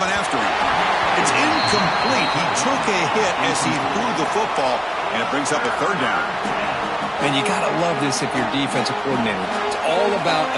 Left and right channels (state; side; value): identical; both; correlation 1.00